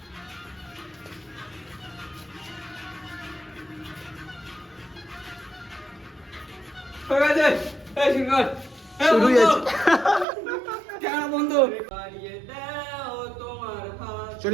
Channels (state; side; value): drops out; left; at 10.2 s